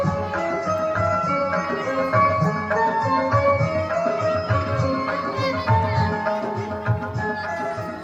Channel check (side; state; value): both; identical; correlation 1.00